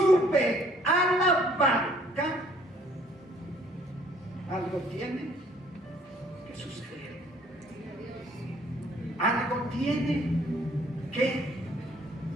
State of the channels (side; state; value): both; normal; correlation 0.60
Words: a la barca, algo tiene que suceder. Algo tiene que